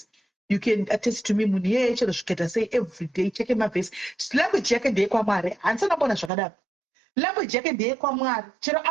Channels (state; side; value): drops out; left; at 6.3 s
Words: You can attest to me munhu yeshe zviketa sei every day cheke mavhesi. Language yake ndeyekwaMwari. Handisana kuona zvakadaro. Language yake ndeyekwaMwari. Chero